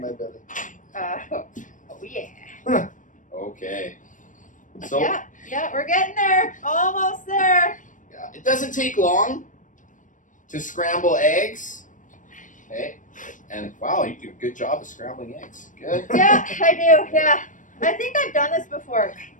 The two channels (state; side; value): late; right; 0.37 ms